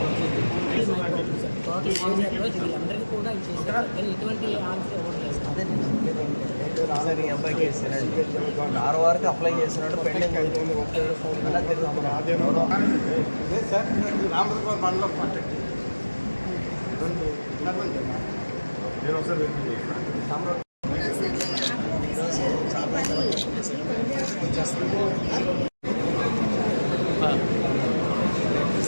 వీళ్ళందరికీ కూడా చేశారు కానీ ఎటువంటి ఆన్సర్ రాలేని అబ్బాయికి ఇస్తున్నాడు. 6 వరకు అప్లై చేస్తున్నాడు. పెండింగ్ అలా తిరుగుతున్నాడు.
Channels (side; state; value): both; inverted; correlation -1.00